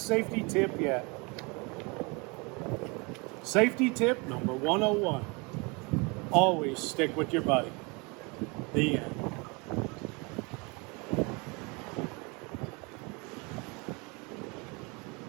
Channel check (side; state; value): left; quieter; 29.1 dB